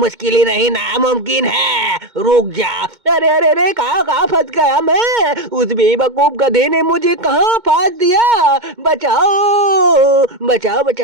ही नहीं, नामुमकिन है। रुक जा। अरे अरे अरे, कहाँ कहाँ फंस गया मैं? उस बेवकूफ गधे ने मुझे कहाँ फांस दिया? बचाओ बचाओ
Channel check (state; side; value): late; left; 2.2 ms